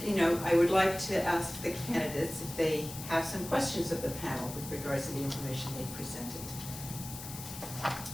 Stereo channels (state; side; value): noise; left; hiss, 11 dB below the sound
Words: you know, I would like to ask the candidates if they have some questions of the panel with regards to the information they presented.